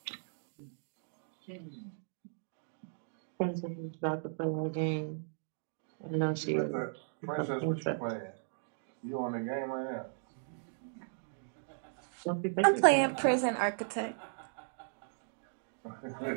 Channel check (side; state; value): left; silent; digital silence